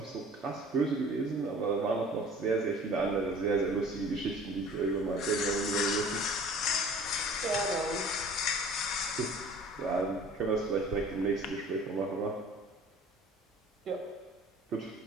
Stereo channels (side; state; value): both; normal; correlation 0.47